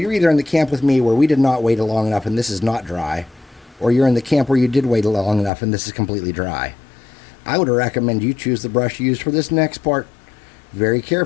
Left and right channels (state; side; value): drops out; right; at 5.5 s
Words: either in the camp with me where we did not wait long enough and this is not dry, or you're in the camp where you did wait long enough and this is completely dry. I would recommend you choose the brush you use for this next part very